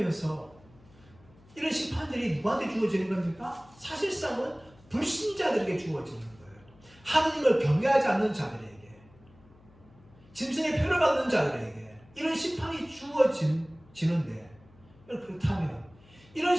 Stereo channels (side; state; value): left; noise; hum, 27 dB below the sound